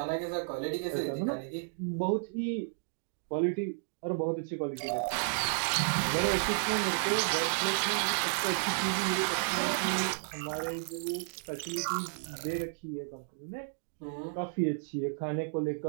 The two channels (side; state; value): left; silent; digital silence